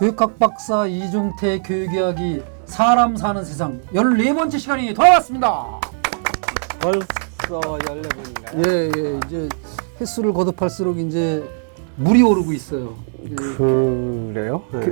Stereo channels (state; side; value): silent; left; digital silence